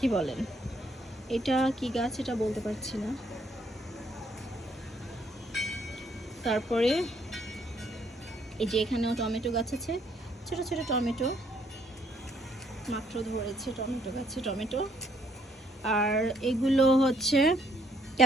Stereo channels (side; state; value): both; normal; correlation 0.69